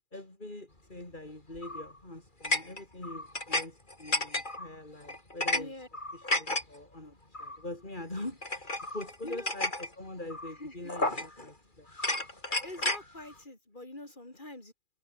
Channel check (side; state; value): right; late; 2.4 ms